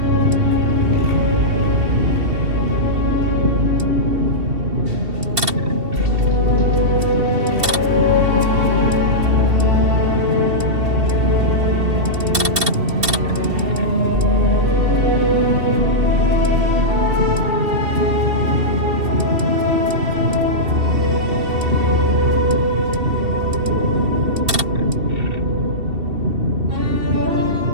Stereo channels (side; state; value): left; late; 2.7 ms